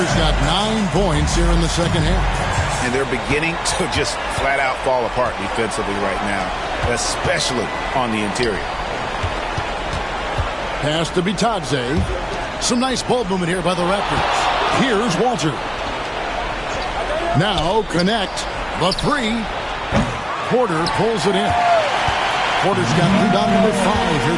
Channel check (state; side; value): identical; both; correlation 1.00